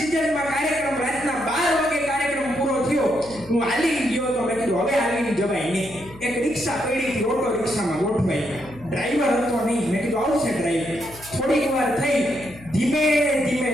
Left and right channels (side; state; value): left; noise; hum, 20 dB below the sound